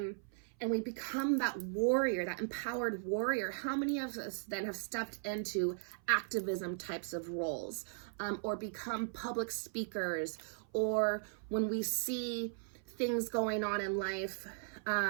we become that warrior, that empowered warrior, how many of us then have stepped into activism types of roles, or become public speakers, or when we see things going on in life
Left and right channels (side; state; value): left; silent; 53 dB below the other